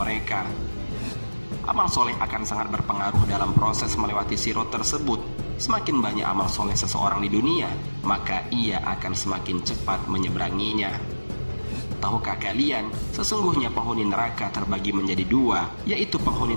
Amal soleh akan sangat berpengaruh dalam proses melewati sirat tersebut. Semakin banyak amal soleh seseorang di dunia, maka ia akan semakin cepat menyeberanginya. Tahukah kalian, sesungguhnya penghuni neraka terbagi menjadi dua, yaitu penghuni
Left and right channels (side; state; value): both; inverted; correlation -1.00